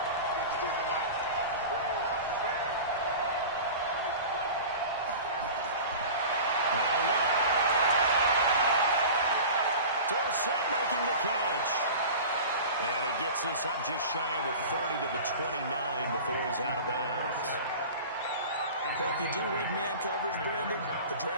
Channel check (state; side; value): inverted; both; correlation -0.36